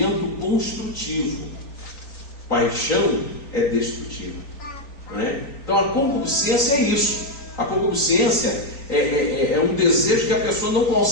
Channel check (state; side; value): late; right; 3.9 ms